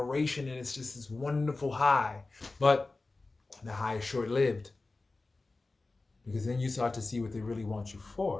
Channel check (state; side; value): quieter; right; 3.4 dB